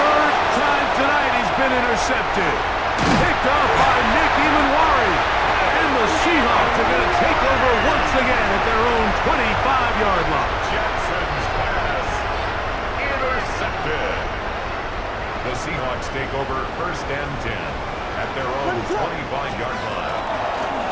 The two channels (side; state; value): both; identical; correlation 1.00